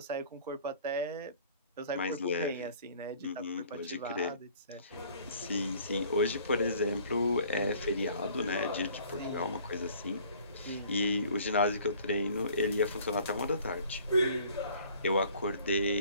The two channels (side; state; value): both; inverted; correlation -0.54